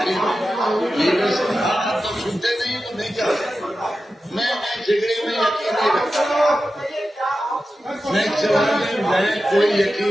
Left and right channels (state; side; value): normal; both; correlation 0.92